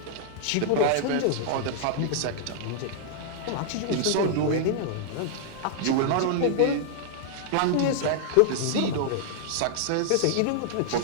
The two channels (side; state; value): both; different; correlation -0.01